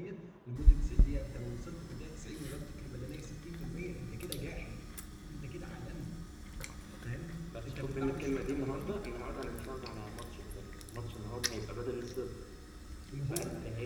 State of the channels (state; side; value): identical; both; correlation 1.00